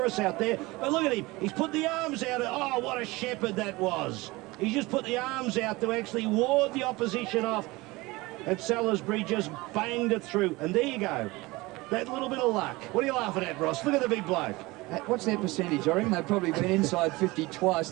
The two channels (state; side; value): quieter; left; 21.8 dB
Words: out there. But look at him. He's put the arms out. Oh, what a shepherd that was. He's just put the arms out to actually ward the opposition off. And Salisbury just banged it through. And there you go. That little bit of luck. What are you laughing at, Ross? Look at the big bloke. What's their percentage? I reckon they've probably been inside 50 twice